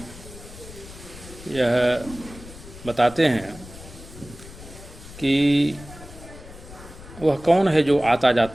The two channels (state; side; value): noise; left; rumble, 16 dB below the sound